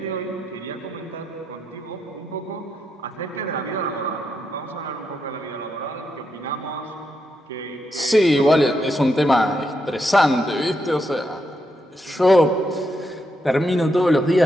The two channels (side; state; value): both; normal; correlation 0.82